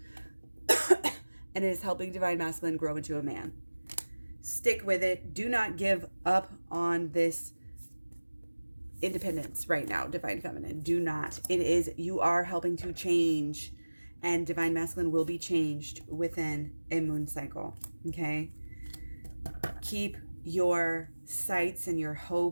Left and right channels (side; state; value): both; inverted; correlation -1.00